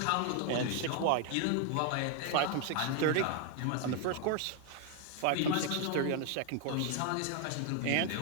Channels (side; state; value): both; different; correlation 0.01